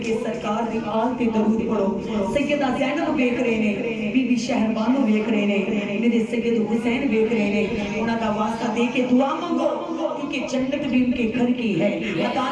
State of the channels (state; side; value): identical; both; correlation 1.00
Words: سرکار دی آل تے درود پڑھو۔ سیدہ زینب ویکھ رہے نے، بی بی شہربانو ویکھ رہے نے، میرے سید حسین ویکھ رہے نے، انہاں دا واسطہ دے کے دعا مانگو، کیونکہ جنت بھی ان کے گھر کی ہے،